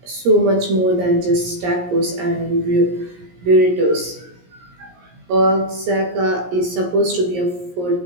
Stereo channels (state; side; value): late; left; 17 ms